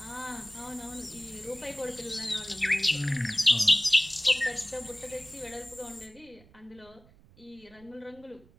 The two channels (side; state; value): right; noise; rumble, 26 dB below the sound